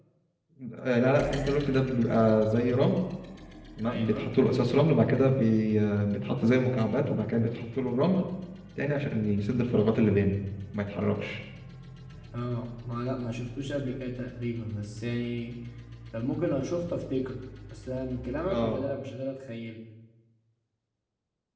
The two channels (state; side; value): identical; both; correlation 1.00